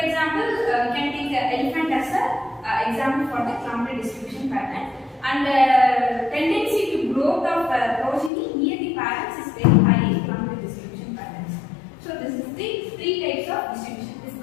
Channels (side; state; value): right; drops out; at 8.3 s